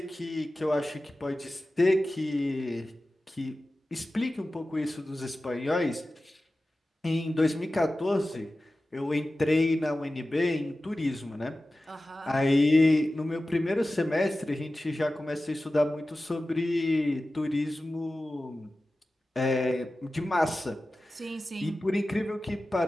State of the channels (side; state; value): both; normal; correlation 0.95